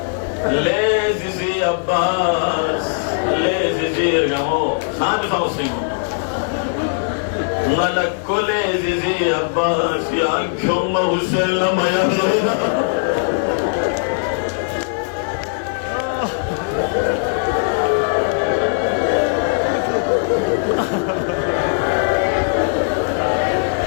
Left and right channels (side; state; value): right; silent; 66 dB below the other